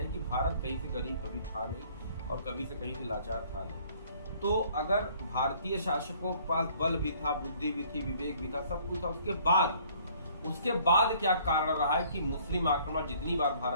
है कि भारत कहीं से गरीब कभी था नहीं और कभी से कहीं से लाचार था नहीं। तो अगर भारतीय शासकों के पास बल भी था, बुद्धि भी थी, विवेक भी था, सब कुछ था, उसके बाद क्या कारण रहा है कि मुस्लिम आक्रमण जितनी बार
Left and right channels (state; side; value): inverted; both; correlation -0.58